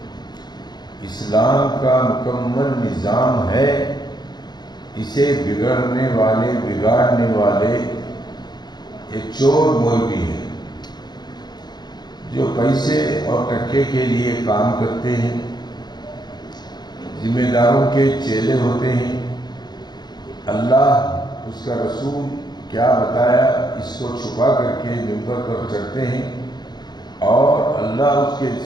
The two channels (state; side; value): late; right; 0.20 ms